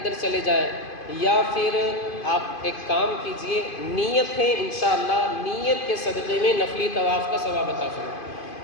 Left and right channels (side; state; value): right; late; 2.5 ms